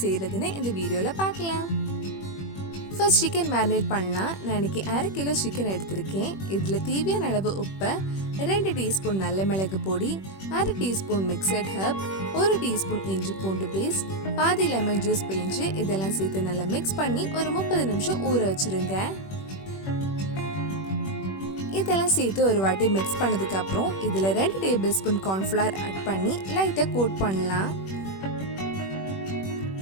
செய்கிறதுன்னு இந்த வீடியோவில் பார்க்கலாம். ஃபர்ஸ்ட் சிக்கன் மேரினேட் பண்ணலாம். நான் இன்னைக்கு 1/2 கிலோ சிக்கன் எடுத்திருக்கேன். இதில் தேவையான அளவு உப்பு, 2 டீஸ்பூன் நல்ல மிளகு பொடி, 1/2 டீஸ்பூன் மிக்சட் ஹர்ப், 1 டீஸ்பூன் இஞ்சி பூண்டு பேஸ்ட், பாதி லெமன் ஜூஸ் பிழிஞ்சு இதெல்லாம் சேர்த்து நல்லா மிக்ஸ் பண்ணி ஒரு 30 நிமிஷம் ஊற வச்சுருங்க. இதெல்லாம் சேர்த்து ஒரு வாட்டி மிக்ஸ் பண்ணதுக்கு அப்புறம் இதில் 2 டேபிள் ஸ்பூன் கார்ன்ஃப்ளவர் ஆட் பண்ணி லைட்டாக கோட் பண்ணலாம்.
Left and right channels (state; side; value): late; right; 21 ms